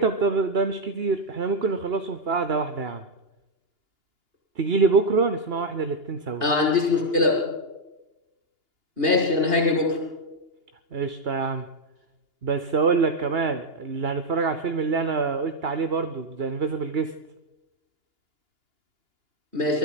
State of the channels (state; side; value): late; left; 2.9 ms